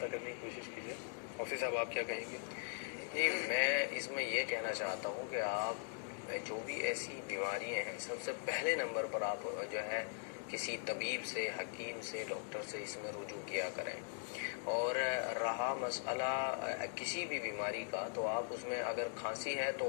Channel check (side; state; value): right; silent; 51 dB below the other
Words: کرنے کی کوشش کیجیے۔ مفتی صاحب آپ کیا کہیں گے؟ جی میں اس میں یہ کہنا چاہتا ہوں کہ آپ جو بھی ایسی بیماریاں ہیں سب سے پہلے نمبر پر آپ جو ہے کسی طبیب سے، حکیم سے، ڈاکٹر سے اس میں رجوع کیا کریں۔ اور رہا مسئلہ کسی بھی بیماری کا، تو آپ اس میں اگر کھانسی ہے